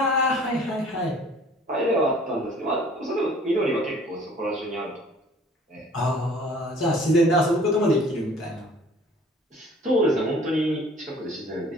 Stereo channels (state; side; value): normal; both; correlation 0.52